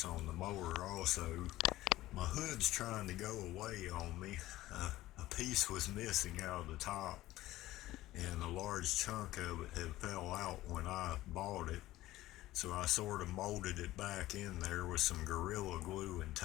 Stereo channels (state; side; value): quieter; right; 16.2 dB